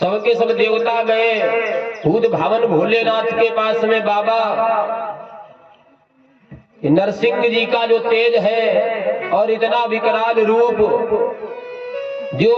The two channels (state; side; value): identical; both; correlation 1.00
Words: सबके सब देवता गए भूत भावन भोलेनाथ के पास में, बाबा नरसिंह जी का जो तेज है और इतना विकराल रूप,